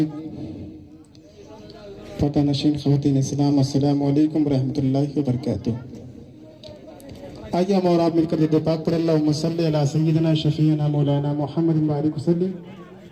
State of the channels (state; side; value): identical; both; correlation 1.00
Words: پردہ نشین خواتین اسلام، السلام علیکم ورحمۃ اللہ وبرکاتہ. آئیے ہم اور آپ مل کر درود پاک پر اللہم صلی علی سیدنا شفیعنا مولانا محمد وآلہ وسلم